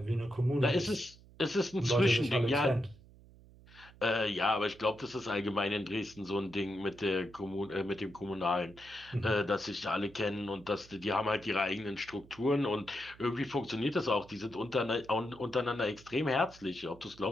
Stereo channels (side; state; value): right; noise; hum, 23 dB below the sound